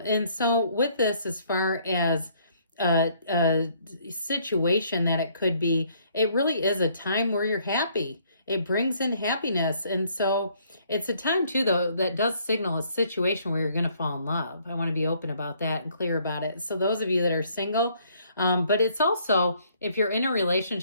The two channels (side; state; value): both; inverted; correlation -0.65